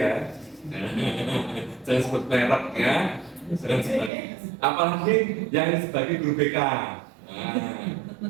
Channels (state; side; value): drops out; left; at 4.1 s